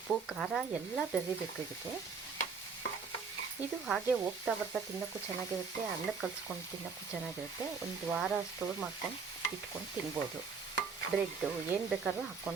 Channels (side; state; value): left; quieter; 5.4 dB